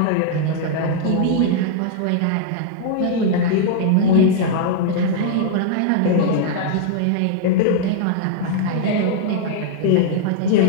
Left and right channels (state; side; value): different; both; correlation -0.01